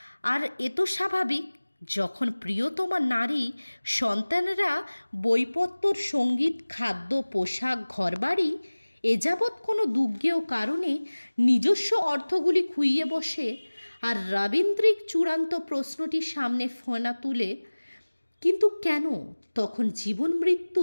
আর এ তো স্বাভাবিক, যখন প্রিয়তমা নারী সন্তানেরা বইপত্তর, সঙ্গীত, খাদ্য, পোশাক, ঘরবাড়ি এ যাবৎ কোনো দুর্জ্ঞেয় কারণে নিজস্ব অর্থগুলি খুইয়ে বসে, আর রবীন্দ্রিক চূড়ান্ত প্রশ্নটি সামনে ফোনা তুলে, কিন্তু কেন তখন জীবন মৃত্যু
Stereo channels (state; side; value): inverted; both; correlation -1.00